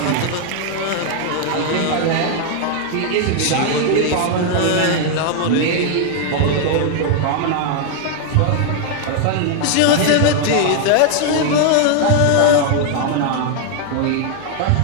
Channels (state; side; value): different; both; correlation 0.00